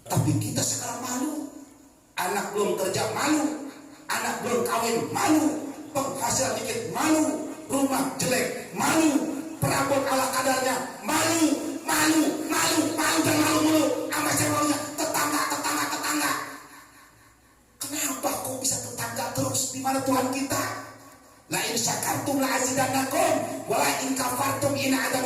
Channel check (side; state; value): both; identical; correlation 1.00